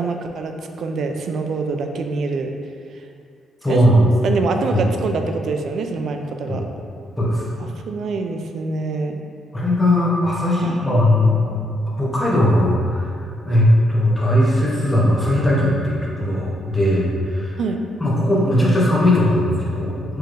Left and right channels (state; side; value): normal; both; correlation 0.76